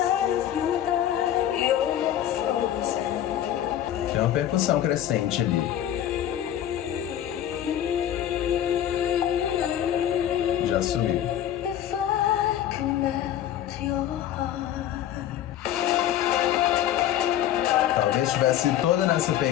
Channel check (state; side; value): quieter; right; 11.3 dB